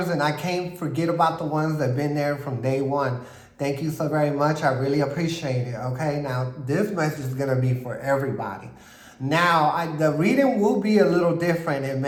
and I can't forget about the ones that have been there from day one. Thank you so very much. I really appreciate it, okay? Now, this message is going to be for everybody. Now, the reading will be a little different. It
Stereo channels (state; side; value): identical; both; correlation 1.00